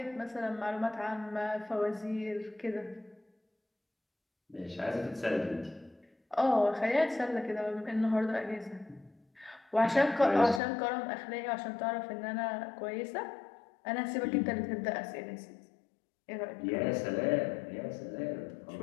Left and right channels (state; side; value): drops out; right; at 10.6 s